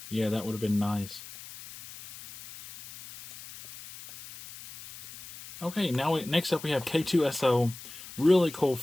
Yeah, that would have been nice. Okay, now next up we have K2SO. Really cool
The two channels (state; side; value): noise; left; hiss, 15 dB below the sound